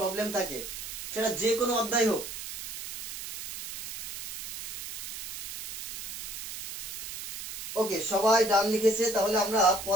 থাকে, সেটা যে কোনো অধ্যায় হোক। ওকে, সবাই ডান লিখেছে, তাহলে আমরা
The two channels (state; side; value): noise; right; hiss, 9 dB below the sound